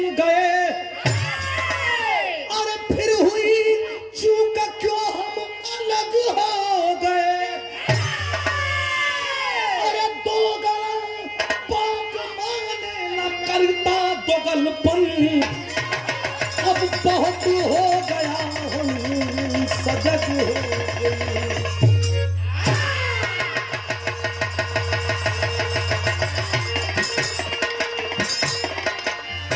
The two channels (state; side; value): identical; both; correlation 1.00